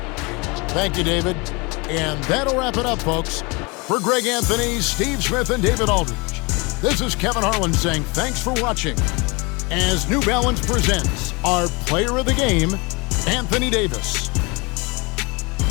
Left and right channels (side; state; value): right; quieter; 27.9 dB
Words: Thank you, David. And that'll wrap it up, folks. For Greg Anthony, Steve Smith, and David Aldridge, this is Kevin Harlan saying thanks for watching as New Balance presents our player of the game, Anthony Davis.